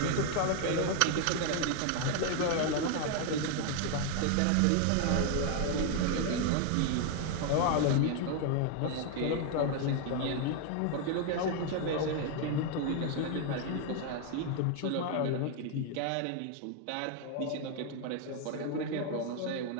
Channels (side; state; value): both; different; correlation 0.00